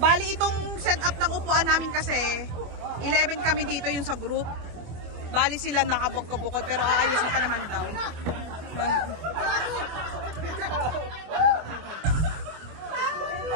Bali itong setup ng upuan namin kasi 11 kami dito yung sa group. Bali sila nakabukod-bukod pero aayusin pa naman daw.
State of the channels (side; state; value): left; late; 25 ms